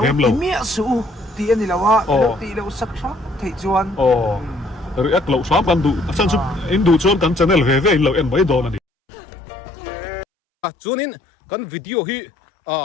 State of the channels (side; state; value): right; drops out; at 8.8 s